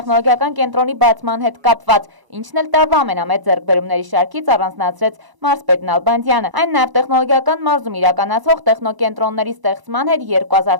կենտրոնի բացման հետ կապված, ինչն էլ տարվա ամենամեծ ձեռքբերումների շարքից առանձնացրեց մարզպետ Նալբանդյանը։ Այն նաև տեխնոլոգիական մարզում իրականացվող տեխնոկենտրոնների ստեղծման հետ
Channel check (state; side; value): late; left; 1.0 ms